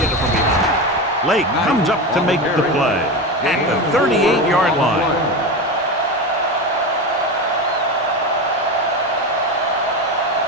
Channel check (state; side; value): normal; both; correlation 0.21